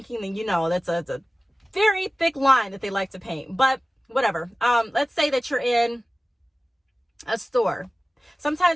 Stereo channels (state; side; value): normal; both; correlation 0.97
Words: then that's a very thick line that they like to paint. But whatever. Let's say that you're in a store.